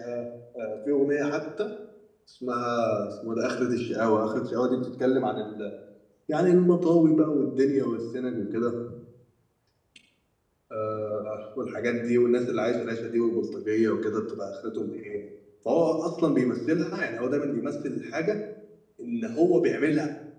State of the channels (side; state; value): both; identical; correlation 1.00